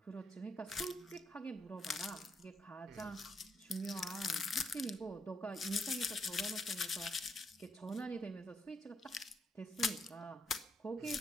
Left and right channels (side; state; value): both; normal; correlation 0.77